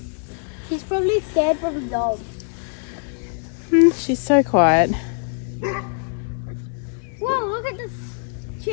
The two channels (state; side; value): silent; right; 58 dB below the other